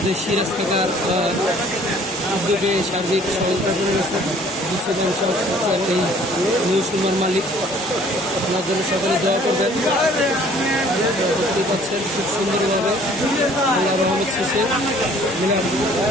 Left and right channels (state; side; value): normal; both; correlation 0.55